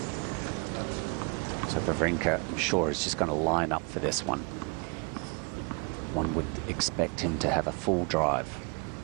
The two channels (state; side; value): quieter; left; 32.7 dB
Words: So Wawrinka, I'm sure, is just going to line up for this one. One would expect him to have a full drive.